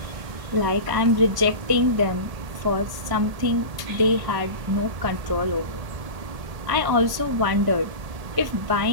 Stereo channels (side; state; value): left; late; 1.6 ms